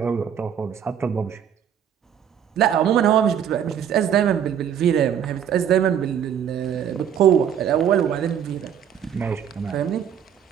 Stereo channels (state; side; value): quieter; left; 8.9 dB